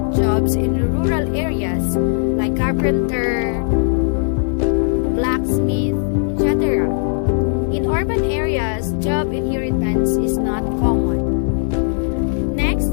jobs in rural areas like carpenter, blacksmith, etc. In urban areas, job inheritance is not common. Next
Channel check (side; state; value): right; silent; digital silence